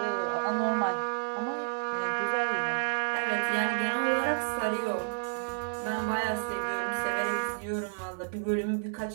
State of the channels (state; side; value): silent; left; digital silence